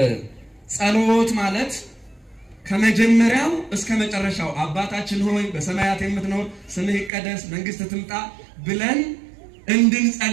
ጸሎት ማለት ከመጀመሪያው እስከ መጨረሻው አባታችን ሆይ በሰማያት የምትኖር ስምህ ይቀደስ መንግስትህ ትምጣ ብለን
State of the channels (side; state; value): left; drops out; at 7.1 s